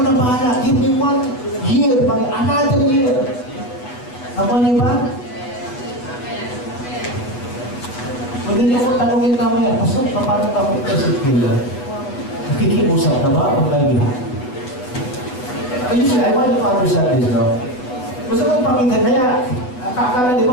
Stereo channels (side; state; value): right; late; 8.0 ms